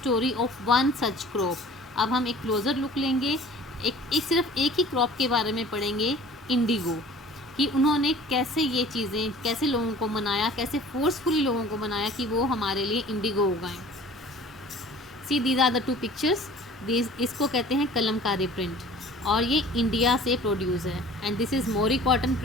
of one such crop। अब हम एक क्लोज़र लुक लेंगे, सिर्फ एक ही क्रॉप के बारे में पढ़ेंगे, इंडिगो, कि उन्होंने कैसे ये चीज़ें, कैसे लोगों को मनाया, कैसे फोर्सफुली लोगों को मनाया कि वो हमारे लिए इंडिगो उगाएं। See these are the two pictures. इसको कहते हैं कलमकारी प्रिंट और ये इंडिया से प्रोड्यूस है। And this is Mori cotton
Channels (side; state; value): both; normal; correlation 0.46